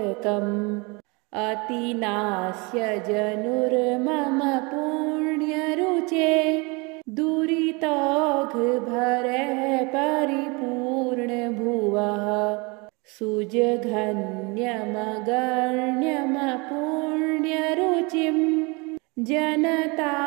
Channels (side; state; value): left; quieter; 28.3 dB